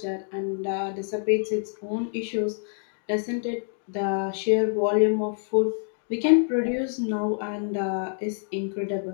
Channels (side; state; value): right; silent; digital silence